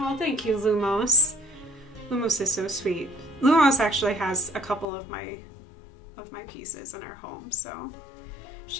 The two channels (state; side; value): drops out; right; at 4.9 s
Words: thank you, Lumos. Lumos is so sweet. Lumos actually has a couple of my pieces in her home, so